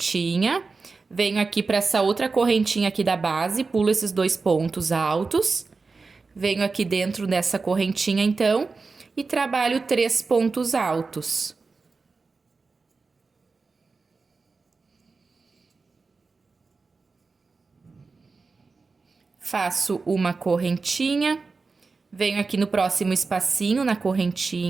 venho aqui para essa outra correntinha aqui da base, pulo esses 2 pontos altos, venho aqui dentro dessa correntinha então e trabalho 3 pontos altos. Faço uma correntinha, venho aqui no próximo espacinho, na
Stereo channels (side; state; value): left; quieter; 4.2 dB